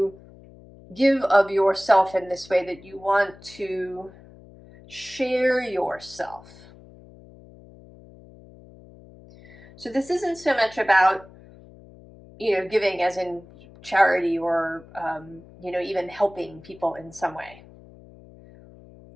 give of yourself in this way, that you want to share yourself. So this isn't so much about, giving as in charity or, even helping people in some way.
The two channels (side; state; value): left; noise; hum, 22 dB below the sound